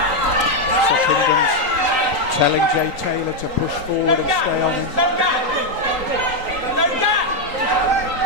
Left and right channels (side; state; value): left; late; 3.8 ms